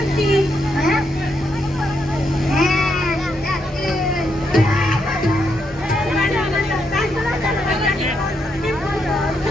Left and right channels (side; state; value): both; normal; correlation 0.79